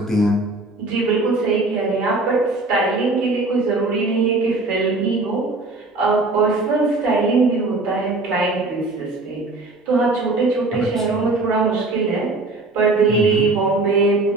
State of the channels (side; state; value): left; quieter; 3.2 dB